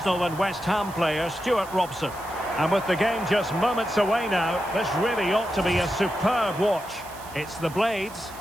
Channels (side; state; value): right; noise; hiss, 18 dB below the sound